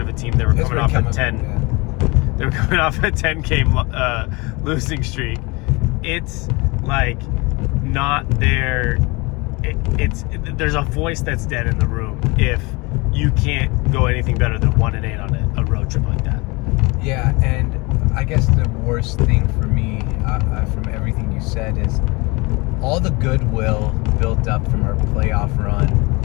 of a team. They were coming off a 10. Yeah. They were coming off a 10-game losing streak. It's like not there. There's a voice that's dead in the room if you can't go anything better than 1-8 on a road trip like that. Yeah, and I guess the worst thing for me from everything you said is all the goodwill built up from our playoff run,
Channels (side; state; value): right; quieter; 25.9 dB